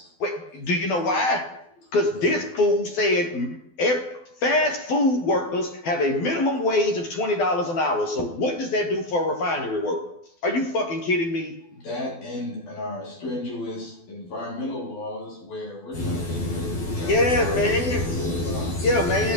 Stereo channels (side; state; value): right; late; 12 ms